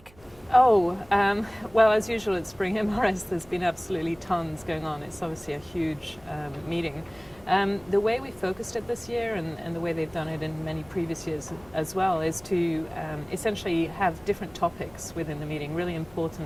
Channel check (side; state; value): right; noise; hum, 26 dB below the sound